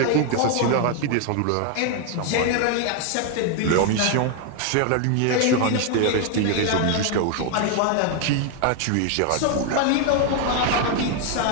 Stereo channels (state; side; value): different; both; correlation 0.00